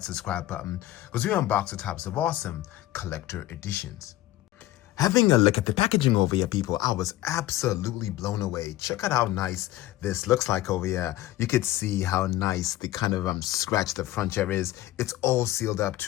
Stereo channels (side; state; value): right; quieter; 15.3 dB